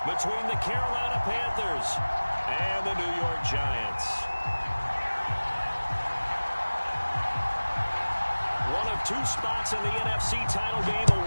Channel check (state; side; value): inverted; both; correlation -1.00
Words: between the Carolina Panthers and the New York Giants. One of two spots in the NFC title game